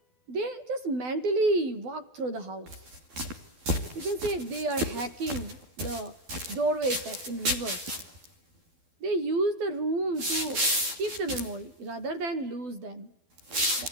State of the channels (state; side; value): late; left; 12 ms